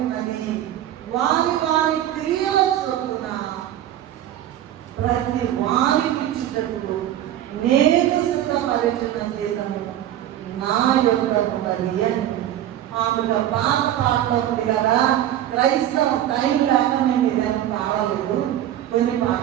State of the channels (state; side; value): quieter; left; 12.0 dB